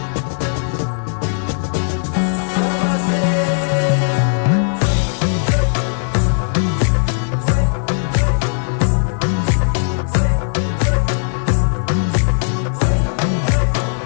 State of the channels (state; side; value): silent; right; digital silence